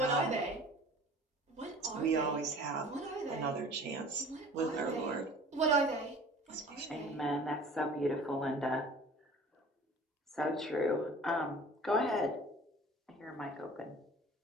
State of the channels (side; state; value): both; normal; correlation 0.45